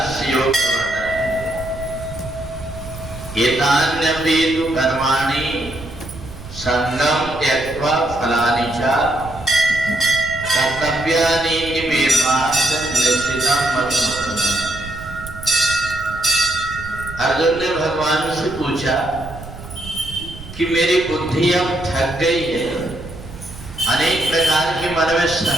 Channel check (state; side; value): noise; right; rumble, 14 dB below the sound